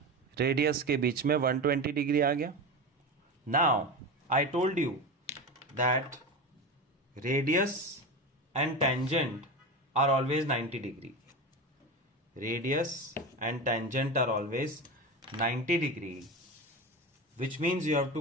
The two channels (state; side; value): normal; both; correlation 0.24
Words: radius के बीच में 120 degree आ गया। Now I told you that radius and tangent are always 90 degree. Radius and tangent are always 90 degree, which means you have